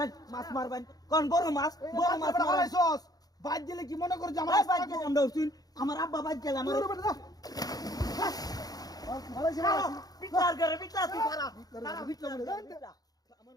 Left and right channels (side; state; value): right; late; 0.18 ms